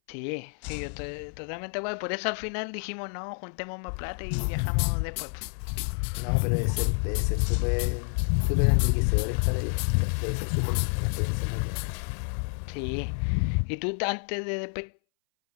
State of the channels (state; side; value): silent; right; 59 dB below the other